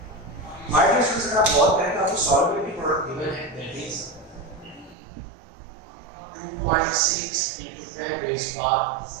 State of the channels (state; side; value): drops out; left; at 5.0 s